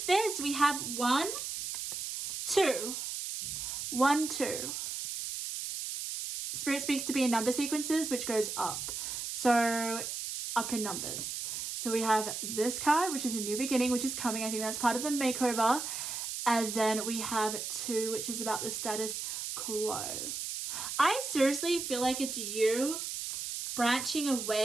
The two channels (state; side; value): noise; right; hiss, 5 dB below the sound